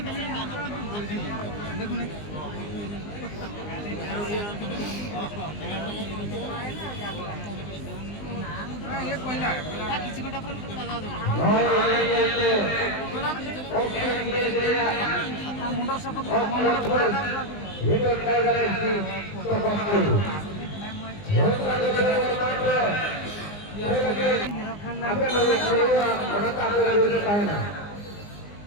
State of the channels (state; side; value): late; right; 19 ms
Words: jaga dulu tahanan.